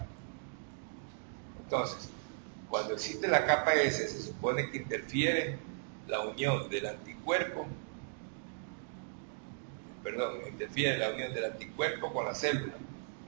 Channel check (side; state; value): left; silent; digital silence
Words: Entonces, cuando existe la capa S, se supone que interfiere la unión del anticuerpo, interfiere la unión del anticuerpo con la célula